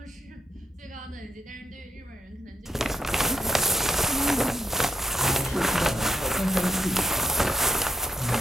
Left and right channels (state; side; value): normal; both; correlation 0.79